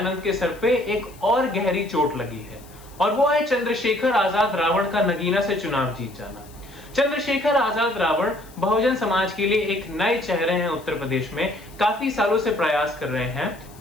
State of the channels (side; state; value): left; noise; hiss, 24 dB below the sound